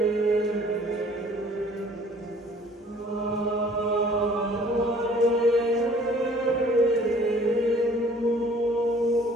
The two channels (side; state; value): both; normal; correlation 0.54